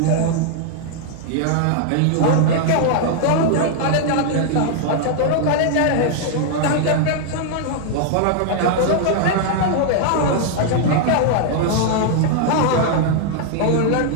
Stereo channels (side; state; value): both; different; correlation 0.00